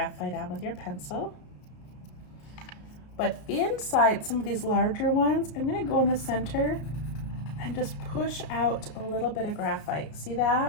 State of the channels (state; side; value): late; right; 33 ms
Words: on with your pencil. But inside some of these larger ones, I'm gonna go in the center and just push out a little bit of graphite. See